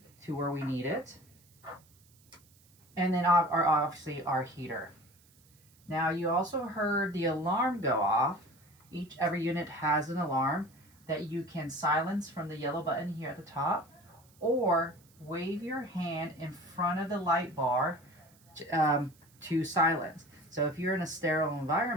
to where we need it. And then obviously our heater. Now you also heard the alarm go off. Every unit has an alarm that you can silence from the yellow button here at the top, or wave your hand in front of the light bar to silence. So if you're in a sterile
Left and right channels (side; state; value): right; noise; hiss, 30 dB below the sound